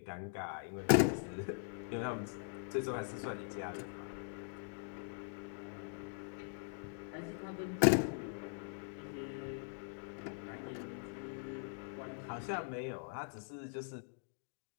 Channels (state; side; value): silent; right; digital silence